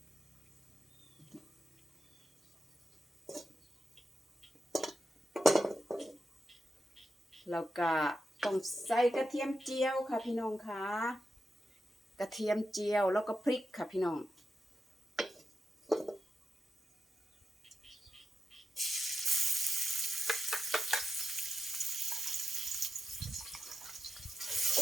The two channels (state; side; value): normal; both; correlation 0.88